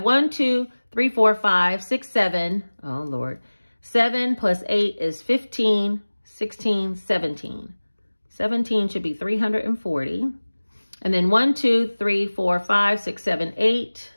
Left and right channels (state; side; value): inverted; both; correlation -1.00